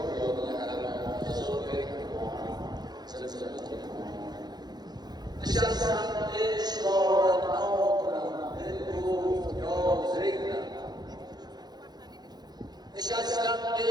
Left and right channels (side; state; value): left; late; 0.20 ms